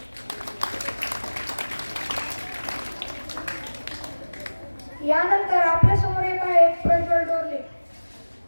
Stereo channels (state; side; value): inverted; both; correlation -1.00